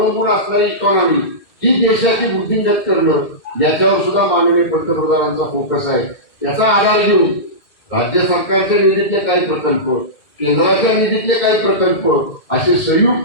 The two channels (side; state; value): right; late; 2.1 ms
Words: असणारी इकॉनॉमी ही देशाची वृद्धिंगत करणं, याच्यावर सुद्धा माननीय पंतप्रधानांचा फोकस आहे. याचा आधार घेऊन राज्य सरकारच्या निधीतले काही प्रकल्प, केंद्राच्या निधीतले काही प्रकल्प असे